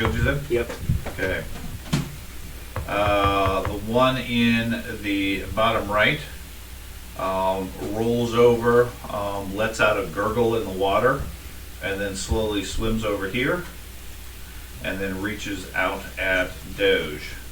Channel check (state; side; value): identical; both; correlation 1.00